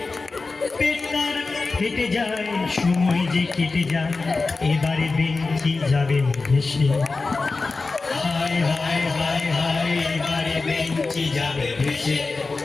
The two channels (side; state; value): right; quieter; 3.8 dB